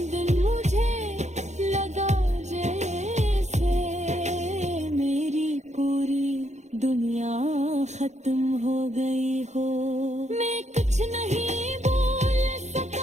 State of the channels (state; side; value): late; left; 0.33 ms